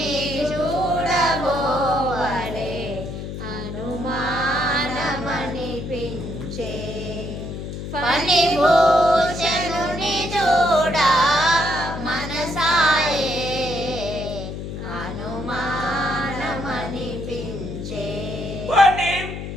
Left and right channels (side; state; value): left; noise; hum, 7 dB below the sound